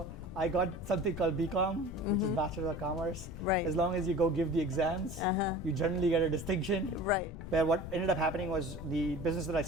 I got something called BCom, which is Bachelor of Commerce. Right. As long as you go give the exams, you generally get a distinction. Right. Where what ended up happening was the business that I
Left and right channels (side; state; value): left; noise; rumble, 10 dB below the sound